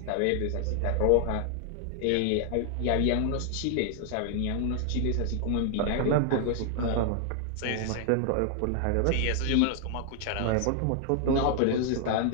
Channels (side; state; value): both; different; correlation 0.00